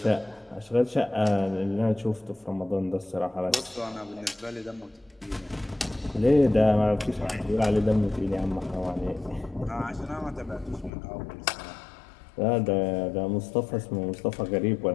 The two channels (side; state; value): right; drops out; at 10.9 s